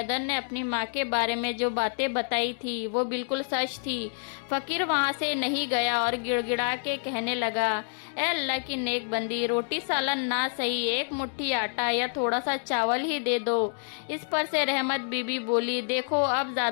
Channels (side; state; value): right; silent; digital silence